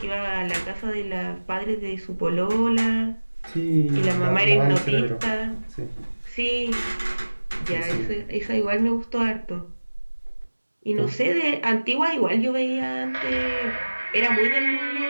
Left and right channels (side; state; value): both; inverted; correlation -1.00